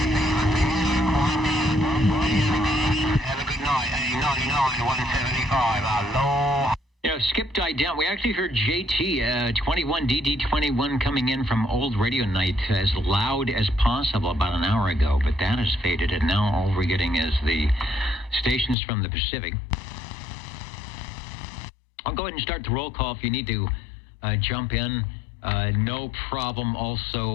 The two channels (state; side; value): drops out; right; at 18.8 s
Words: Have a good night, 99, 175, hello. You know, Skip died down. We actually heard JT, 21, DD21 coming in from Old Radio Night as loud as possible about an hour ago, but that has faded, and now all we're getting is the stations from the Pacific. I'll go ahead and start the roll call if you need to jump in. No problem.